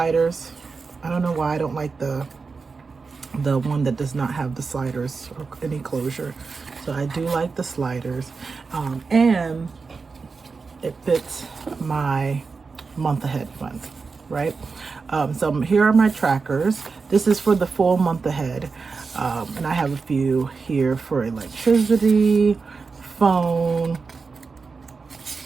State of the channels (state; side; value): quieter; left; 4.6 dB